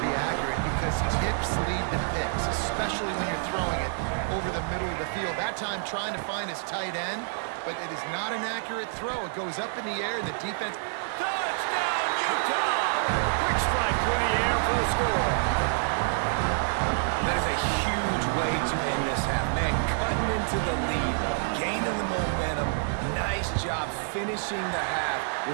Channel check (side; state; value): left; silent; digital silence